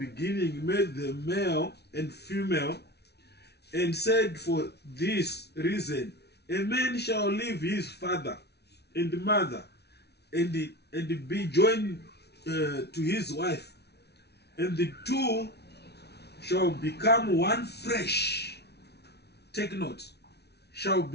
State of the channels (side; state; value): right; late; 0.49 ms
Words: made them male and female, and said, for this reason a man shall leave his father and mother and be joined to his wife, and the two shall become one flesh. Take note. Shall